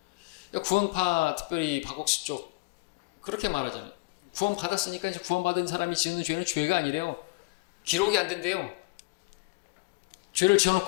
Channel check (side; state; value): right; quieter; 25.9 dB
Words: 구원파 특별히 박옥수 쪽 그렇게 말하잖아요. 구원 받았으니까 이제 구원받은 사람이 지는 죄는 죄가 아니래요. 기록이 안 된대요. 죄를